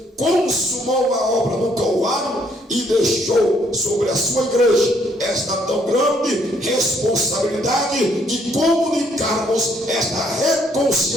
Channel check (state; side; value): normal; both; correlation 0.67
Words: consumou a obra no Calvário e deixou sobre a sua igreja esta tão grande responsabilidade de comunicarmos esta